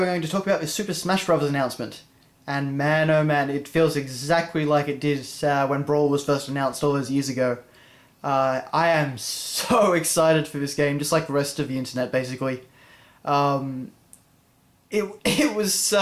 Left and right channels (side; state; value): both; identical; correlation 1.00